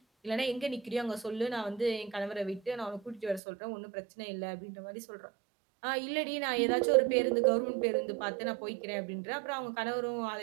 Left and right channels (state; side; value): drops out; left; at 3.4 s